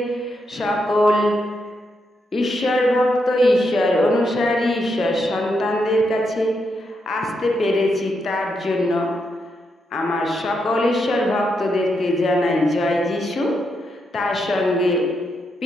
সকল ঈশ্বর ভক্ত, ঈশ্বর অনুসারী, ঈশ্বর সন্তানদের কাছে আসতে পেরেছি। তার জন্য আমার সকল ঈশ্বর ভক্তদেরকে জানাই জয় যিশু। তার সঙ্গে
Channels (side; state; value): both; normal; correlation 0.82